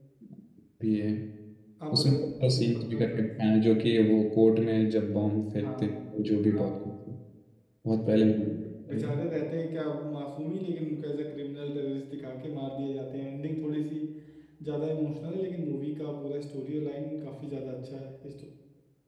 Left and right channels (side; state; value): both; identical; correlation 1.00